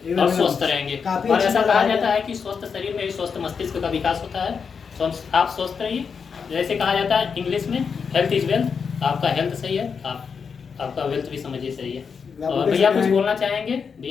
और स्वस्थ रहेंगे। और ऐसा कहा जाता है कि स्वस्थ शरीर में ही स्वस्थ मस्तिष्क का विकास होता है। तो आप स्वस्थ रहिए। जैसे कहा जाता है इंग्लिश में, हेल्थ इज वेल्थ। आपका हेल्थ सही है, आपका वेल्थ भी समझिए सही है। और भैया कुछ बोलना चाहेंगे?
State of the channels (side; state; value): right; quieter; 6.0 dB